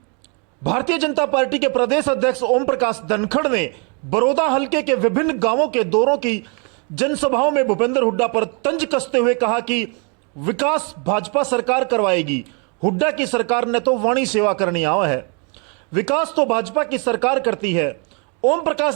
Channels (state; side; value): quieter; left; 35.5 dB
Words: भारतीय जनता पार्टी के प्रदेश अध्यक्ष ओम प्रकाश धनखड़ ने बड़ौदा हलके के विभिन्न गांवों के दौरों की जनसभाओं में भूपेंद्र हुड्डा पर तंज कसते हुए कहा कि विकास भाजपा सरकार करवाएगी, हुड्डा की सरकार ने तो वाणी सेवा करनी आवा है, विकास तो भाजपा की सरकार करती है। ओम प्रकाश